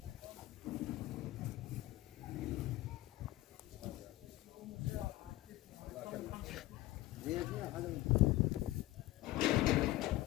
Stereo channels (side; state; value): right; quieter; 16.9 dB